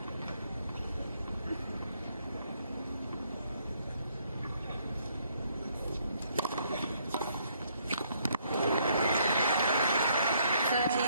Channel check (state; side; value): inverted; both; correlation -0.69